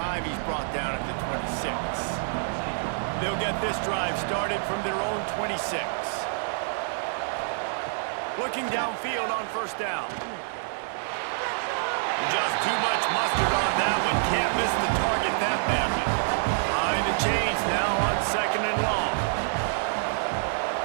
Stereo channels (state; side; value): silent; left; 60 dB below the other